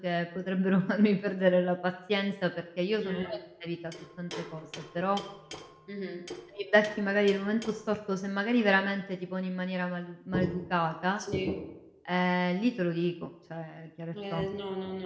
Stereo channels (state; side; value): identical; both; correlation 1.00